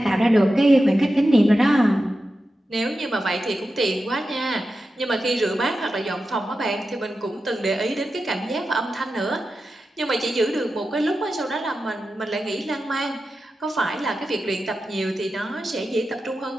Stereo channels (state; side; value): normal; both; correlation 0.91